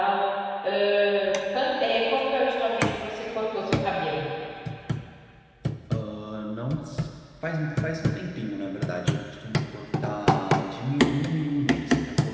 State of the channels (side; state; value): both; identical; correlation 1.00